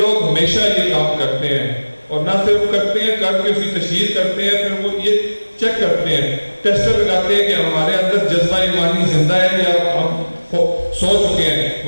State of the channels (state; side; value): inverted; both; correlation -1.00